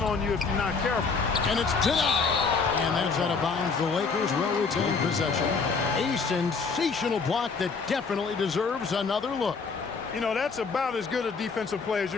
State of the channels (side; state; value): right; quieter; 4.9 dB